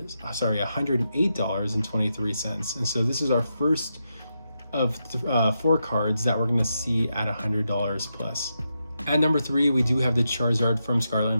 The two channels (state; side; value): inverted; both; correlation -0.85